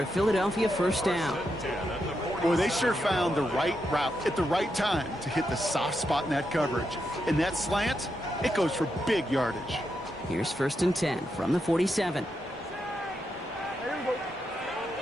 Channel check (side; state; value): both; normal; correlation 0.84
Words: a Philadelphia first down. Boy, they sure found the right route at the right time to hit the soft spot in that coverage. And that slant, it goes for big yardage. Here's 1st and 10 from the 47.